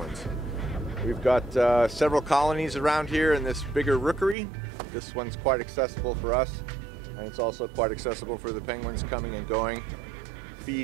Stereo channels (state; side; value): drops out; left; at 4.4 s